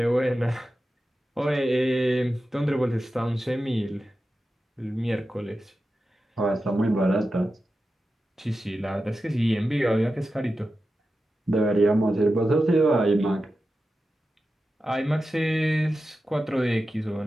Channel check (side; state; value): both; normal; correlation 0.92